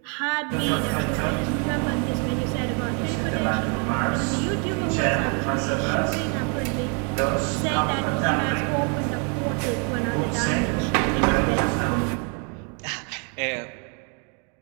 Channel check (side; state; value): left; quieter; 37.7 dB